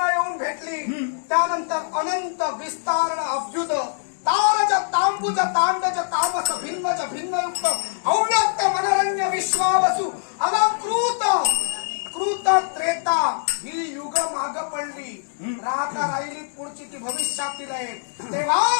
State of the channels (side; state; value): right; silent; digital silence